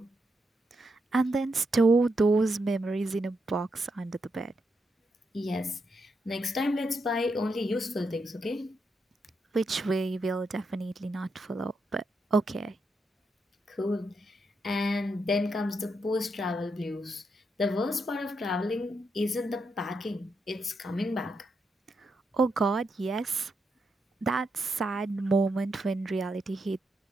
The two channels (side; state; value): both; normal; correlation 0.82